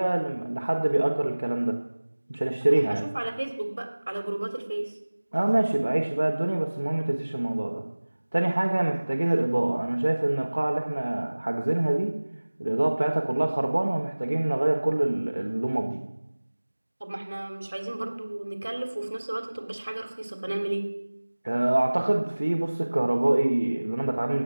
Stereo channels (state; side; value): inverted; both; correlation -1.00